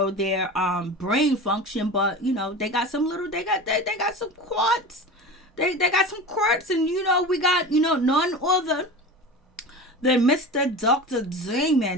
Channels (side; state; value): both; normal; correlation 0.31